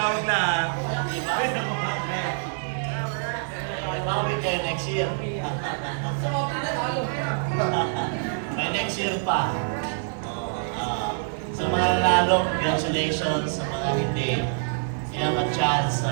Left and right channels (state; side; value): silent; left; digital silence